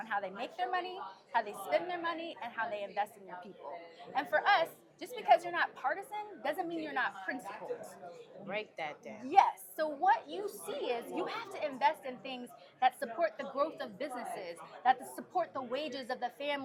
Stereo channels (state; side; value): identical; both; correlation 1.00